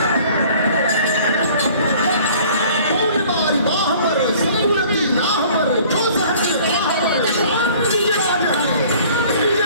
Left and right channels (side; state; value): both; inverted; correlation -0.52